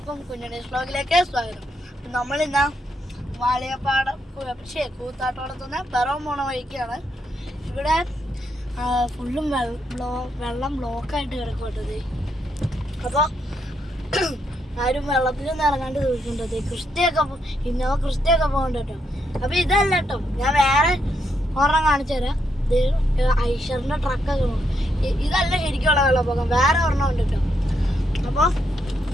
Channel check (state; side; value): normal; both; correlation 0.78